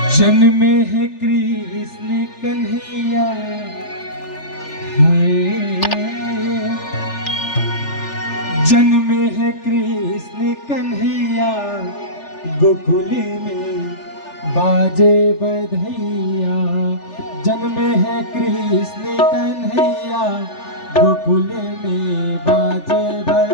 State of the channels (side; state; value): right; late; 3.4 ms